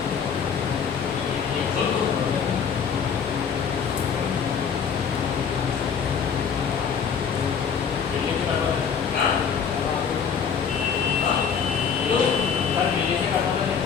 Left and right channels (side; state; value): right; quieter; 6.8 dB